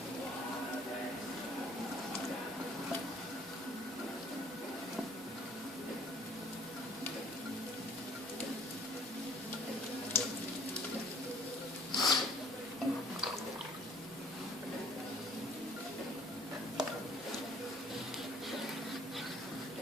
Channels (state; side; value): normal; both; correlation 0.55